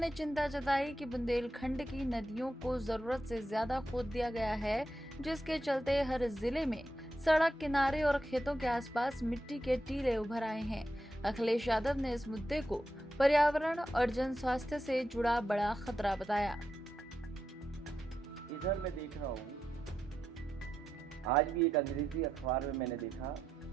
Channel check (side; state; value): both; normal; correlation 0.86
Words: चिंता जताई कि बुंदेलखंड की नदियों को जरूरत से ज्यादा खोद दिया गया है, जिसके चलते हर जिले में सड़क किनारे और खेतों के आसपास मिट्टी के टीले उभर आए हैं। अखिलेश यादव ने इस मुद्दे को पर्यावरण और जन स्वास्थ्य से जुड़ा बड़ा खतरा बताया। इधर मैं देख रहा हूँ, आज भी एक अंग्रेजी अखबार में मैंने देखा